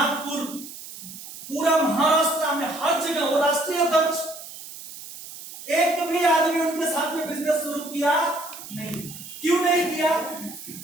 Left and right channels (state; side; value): noise; right; hiss, 13 dB below the sound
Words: पूरा महाराष्ट्र में हर जगह वो राष्ट्रीय अध्यक्ष. एक भी आदमी उनके साथ में बिजनेस शुरू किया नहीं. क्यों नहीं किया?